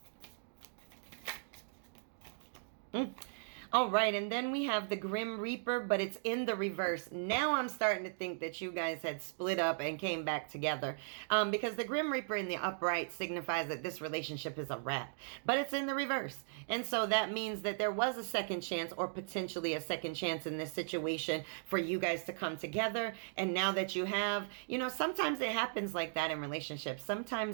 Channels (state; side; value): silent; left; digital silence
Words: All right, and then we have the Grim Reaper, but it's in the reverse. Now I'm starting to think that you guys had split up and came back together, because the Grim Reaper in the upright signifies that this relationship is a wrap, but it's in the reverse. And so that means that there was a second chance, or potentially a second chance in this situation, for you guys to come together. And now that you have, you know, sometimes it happens like that in relationships.